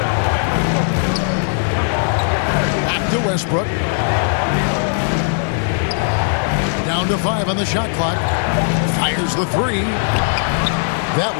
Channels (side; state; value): right; silent; 63 dB below the other